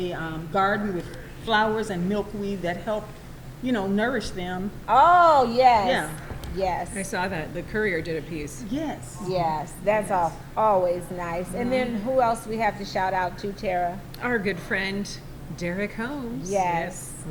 garden with flowers and milkweed that help, nourish them. Oh, yes. Yeah. Yes. I saw that, the Courier did a piece. Yes. Yes, that's always nice. And then who else we have to shout out to, Tara? Our good friend, Derek Holmes. Yes.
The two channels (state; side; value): identical; both; correlation 1.00